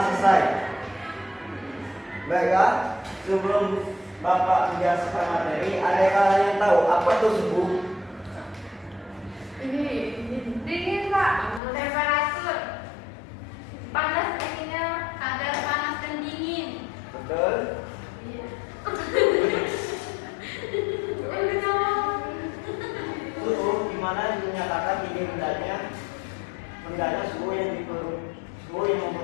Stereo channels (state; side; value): drops out; right; at 11.6 s